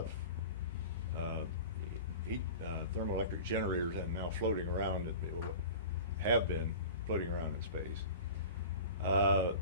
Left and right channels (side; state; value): both; inverted; correlation -0.36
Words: thermoelectric generators and now floating around, have been floating around in space.